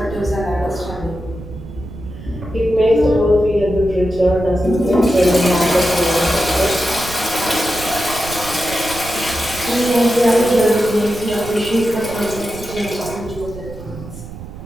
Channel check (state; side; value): noise; right; rumble, 13 dB below the sound